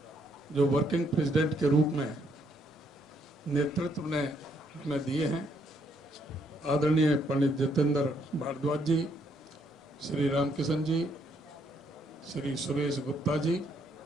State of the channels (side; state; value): both; normal; correlation 0.71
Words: जो वर्किंग प्रेसिडेंट के रूप में नेतृत्व ने हमें दिए हैं, आदरणीय पंडित जितेंद्र भारद्वाज जी, श्री रामकिशन जी, श्री सुरेश गुप्ता जी,